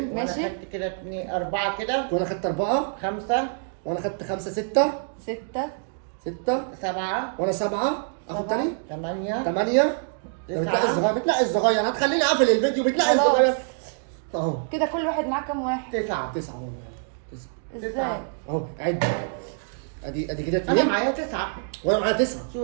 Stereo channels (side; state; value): left; silent; digital silence